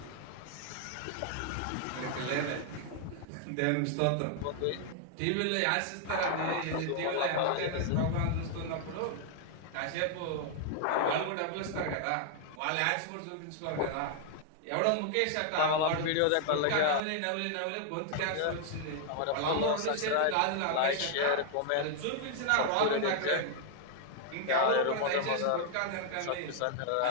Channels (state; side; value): different; both; correlation 0.00